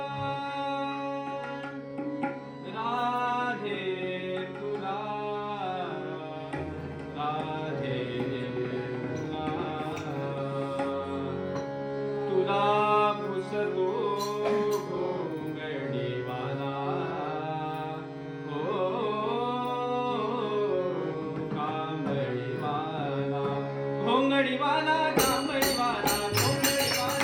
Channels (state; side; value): identical; both; correlation 1.00